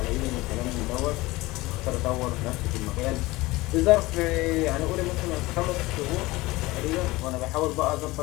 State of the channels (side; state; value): right; quieter; 20.4 dB